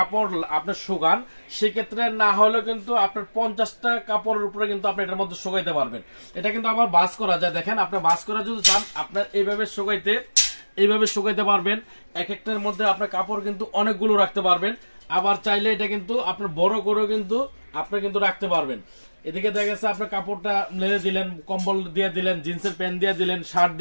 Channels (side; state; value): both; inverted; correlation -1.00